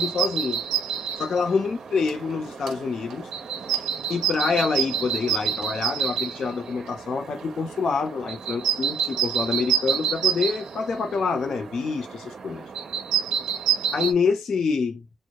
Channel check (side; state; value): both; normal; correlation 0.64